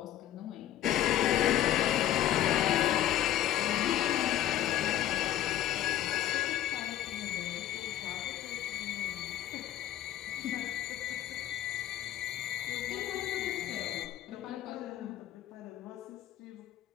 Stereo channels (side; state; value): right; quieter; 12.4 dB